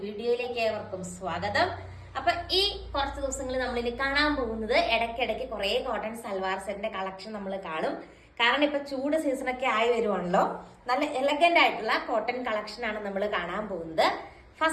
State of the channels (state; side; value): identical; both; correlation 1.00